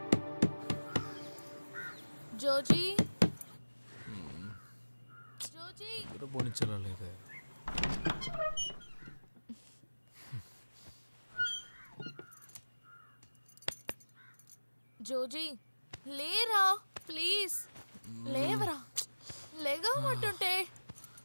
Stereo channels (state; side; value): inverted; both; correlation -1.00